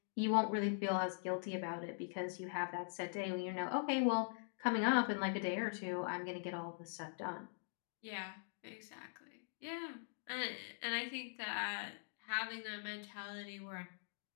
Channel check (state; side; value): silent; right; digital silence